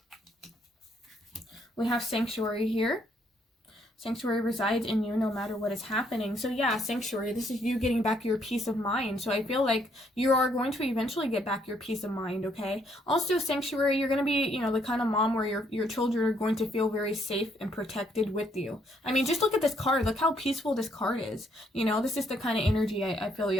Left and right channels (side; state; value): both; normal; correlation 0.70